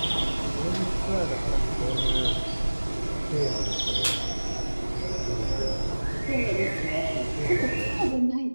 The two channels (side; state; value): both; inverted; correlation -1.00